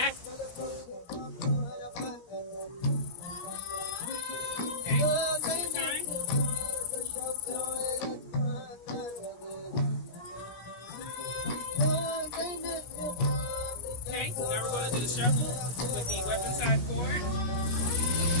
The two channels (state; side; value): late; right; 17 ms